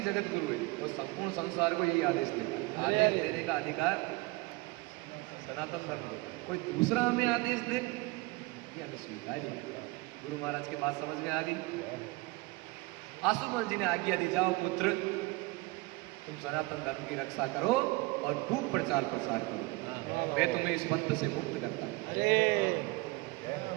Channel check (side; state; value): left; quieter; 23.3 dB